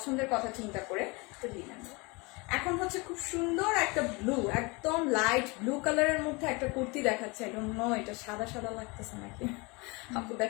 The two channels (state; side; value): quieter; right; 27.0 dB